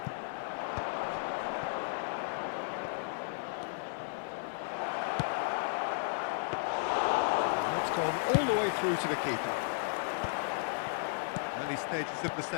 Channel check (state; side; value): silent; right; digital silence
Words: And it's gone all the way through to the keeper. Early stages of the